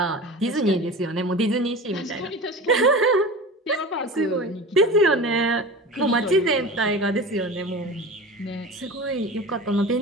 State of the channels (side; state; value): both; normal; correlation 0.33